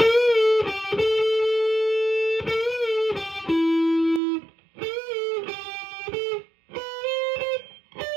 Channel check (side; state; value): left; drops out; at 4.2 s